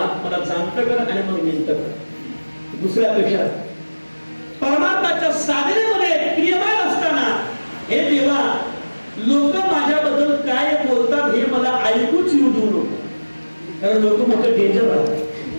मला जाणतं कर आणि मग निंत कर. दुसऱ्यापेक्षा परमार्थाच्या साधनेमध्ये क्रियमान असताना हे देवा लोक माझ्याबद्दल काय बोलतात हे मला ऐकूच येऊ देऊ नको. कारण लोक मोठं डेंजर आहे.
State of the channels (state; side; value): inverted; both; correlation -1.00